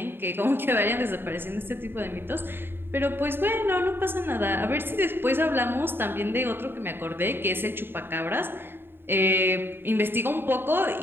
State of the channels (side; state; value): left; late; 0.10 ms